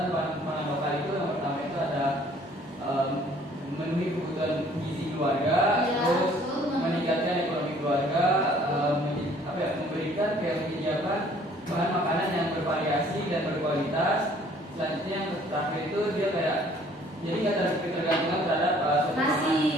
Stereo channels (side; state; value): both; normal; correlation 0.57